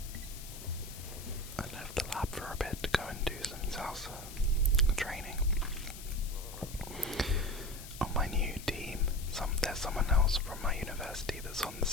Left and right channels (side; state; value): left; noise; hiss, 14 dB below the sound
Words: left the lab for a bit to go and do some salsa training. On my new team, there's someone else from my university that's on the